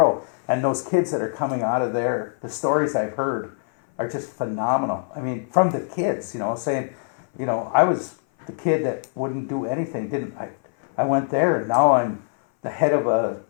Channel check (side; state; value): right; silent; 59 dB below the other